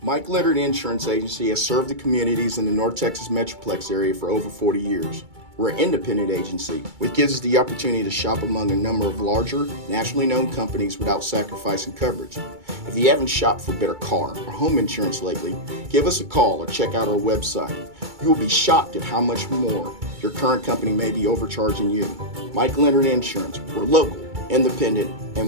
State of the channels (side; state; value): left; late; 2.3 ms